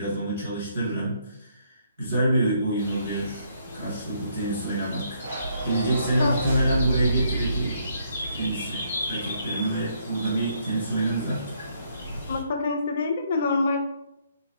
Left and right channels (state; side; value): inverted; both; correlation -0.70